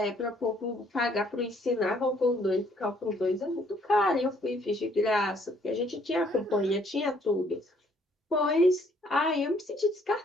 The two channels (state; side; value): normal; both; correlation 0.64